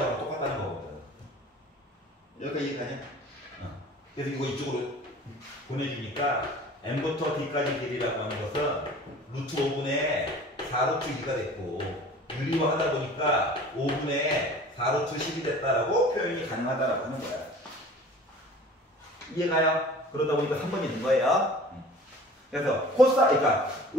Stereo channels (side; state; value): both; normal; correlation 0.44